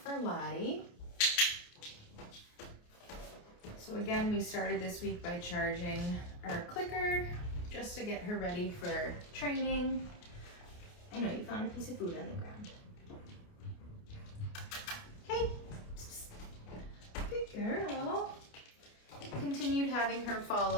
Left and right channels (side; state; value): right; late; 28 ms